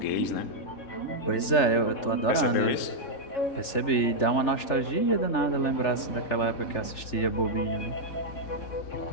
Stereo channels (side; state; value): right; late; 3.4 ms